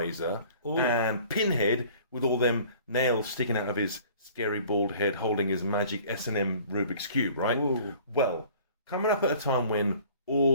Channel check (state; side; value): inverted; both; correlation -0.50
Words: and Pinhead with all them nails sticking out of his scary bald head holding his magic S&M Rubik's Cube, right? Ooh. Well, coming up at a time when